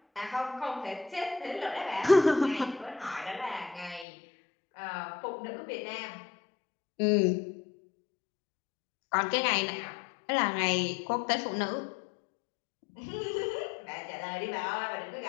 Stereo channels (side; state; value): right; drops out; at 4.0 s